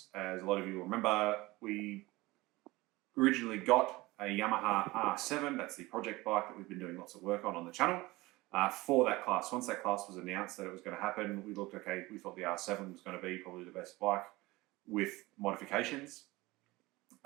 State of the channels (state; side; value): quieter; left; 20.8 dB